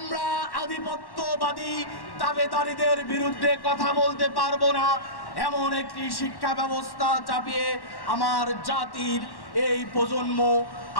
আধিপত্যবাদী দাবেদারীদের বিরুদ্ধে কথা বলতে পারবো না, এমন একটি শিক্ষা ব্যবস্থা চাপিয়ে আমার জাতির এই প্রজন্ম,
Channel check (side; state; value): right; late; 1.1 ms